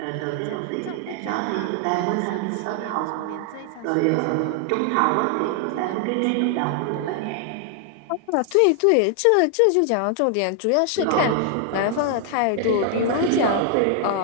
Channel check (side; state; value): both; different; correlation 0.00